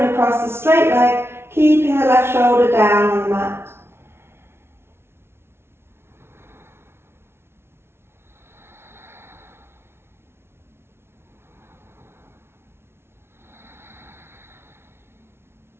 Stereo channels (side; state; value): left; late; 0.12 ms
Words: across the straight leg, keeping the left shoulder down on the mat.